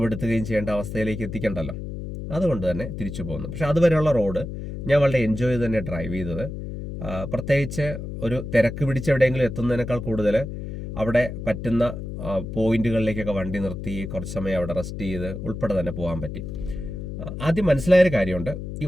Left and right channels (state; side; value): noise; left; hum, 7 dB below the sound